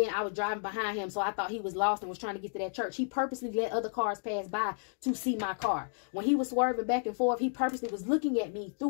I was driving behind him, so I thought he was lost and was trying to get to that church. He purposely let other cars pass by to see my car. When he was swerving back and forth, he purposely was looking at me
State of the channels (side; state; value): right; silent; digital silence